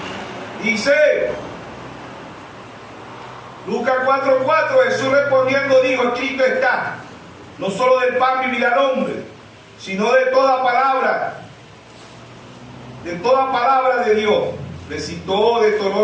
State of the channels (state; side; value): identical; both; correlation 1.00